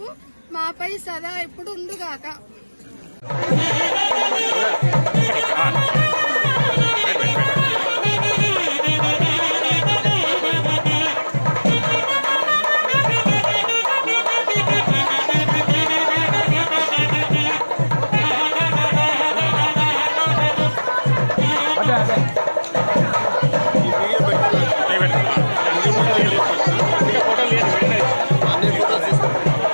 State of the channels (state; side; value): inverted; both; correlation -1.00